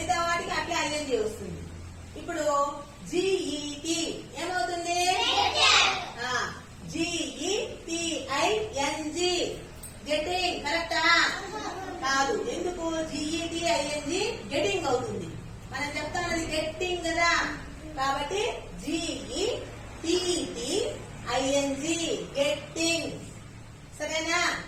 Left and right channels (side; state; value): both; identical; correlation 1.00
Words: వాటికి అట్లే ఐఎన్జి వస్తుంది. ఇప్పుడు GET ఏమవుతుంది? GETING getting. కరెక్టా? కాదు. ఎందుకు? GETING గెటింగ్ అవుతుంది. మనం చెప్తామది గెట్టింగ్ కదా, కాబట్టి GETTING గెట్టింగ్. సరేనా?